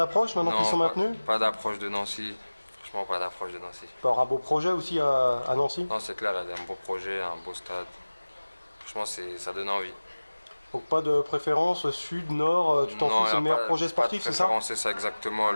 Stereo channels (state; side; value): inverted; both; correlation -1.00